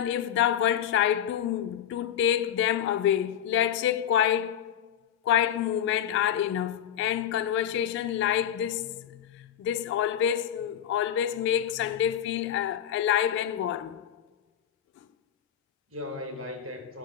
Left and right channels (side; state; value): right; quieter; 9.9 dB